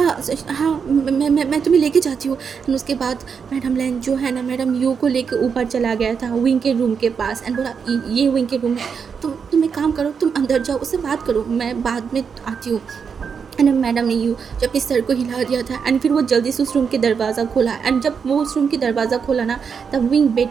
मैं तुम्हें लेके जाती हूँ। एंड उसके बाद मैडम लैन जो है ना मैडम यू को लेके ऊपर चला गया था विंग के रूम के पास एंड बोला, ये विंग के रूम है, तुम एक काम करो, तुम अंदर जाओ, उससे बात करो, मैं बाद में आती हूँ। एंड मैडम ने यू जब अपने सर को हिला दिया था एंड फिर वो जल्दी से उस रूम के दरवाज़ा खोला। एंड जब वो उस रूम के दरवाज़ा खोला ना तब विंग बेड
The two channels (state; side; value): quieter; left; 6.3 dB